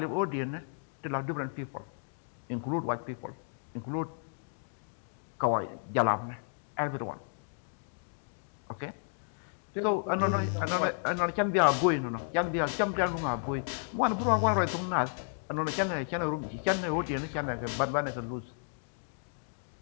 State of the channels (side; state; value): right; silent; digital silence